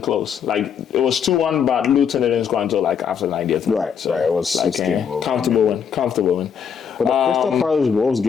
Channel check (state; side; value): quieter; right; 7.4 dB